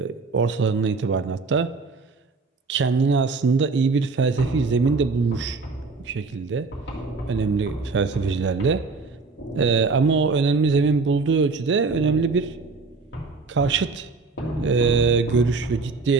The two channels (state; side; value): quieter; left; 4.2 dB